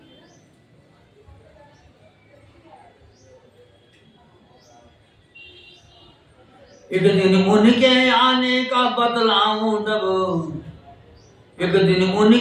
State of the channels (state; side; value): identical; both; correlation 1.00